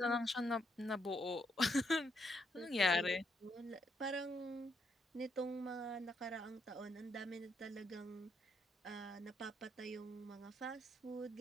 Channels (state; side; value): normal; both; correlation 0.76